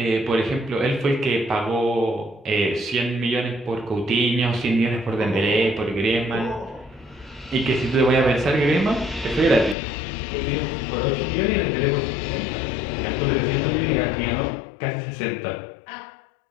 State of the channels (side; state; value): right; drops out; at 9.8 s